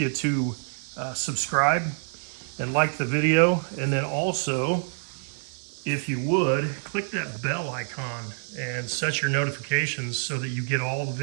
to subscribe and like the video, and then also, if you would, click that bell icon and set your notifications so that you get all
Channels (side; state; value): left; silent; 57 dB below the other